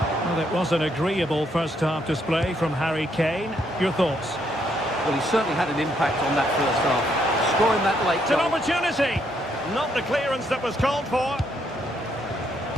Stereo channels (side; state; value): both; normal; correlation 0.73